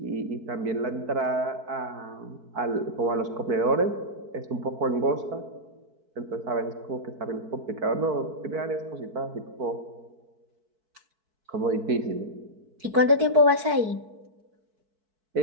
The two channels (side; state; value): left; late; 4.6 ms